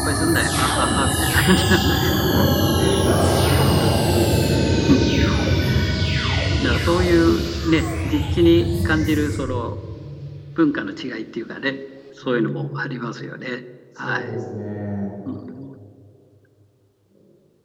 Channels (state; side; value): identical; both; correlation 1.00